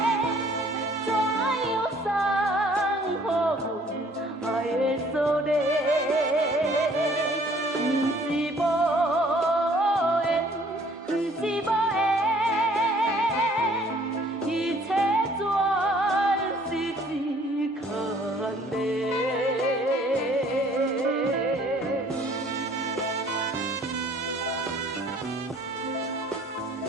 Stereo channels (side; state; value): both; normal; correlation 0.57